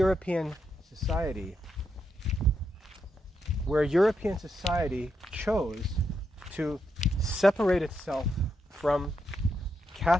society, where European society chose to separate itself from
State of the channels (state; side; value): normal; both; correlation 0.82